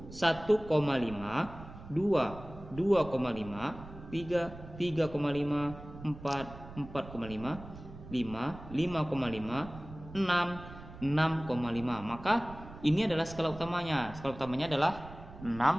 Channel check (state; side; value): noise; right; rumble, 15 dB below the sound